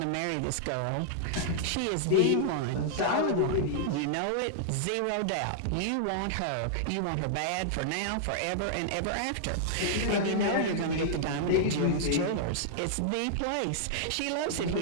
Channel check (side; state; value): both; different; correlation -0.01